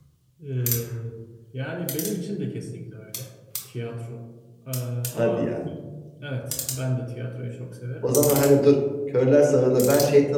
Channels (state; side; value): identical; both; correlation 1.00